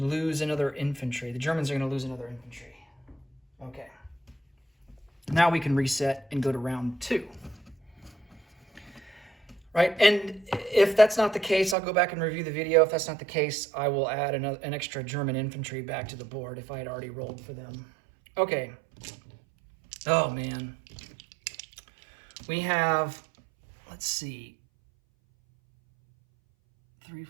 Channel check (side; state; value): left; drops out; at 11.8 s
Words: another infantry. The Germans are going to lose another infantry. Okay. Now we can reset and go to round 2. Right, and if that's not the case, I'll go back and review the video. If that's not the case, I will add an extra German infantry back to the board if I had already rolled for them. Okay. Oh, man. We have, let's see, 3,